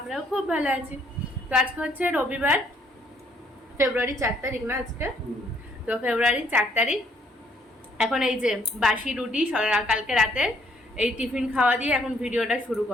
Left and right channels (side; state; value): both; normal; correlation 0.66